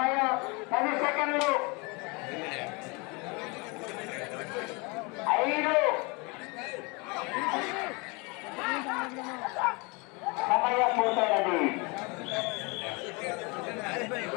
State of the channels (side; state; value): right; quieter; 28.7 dB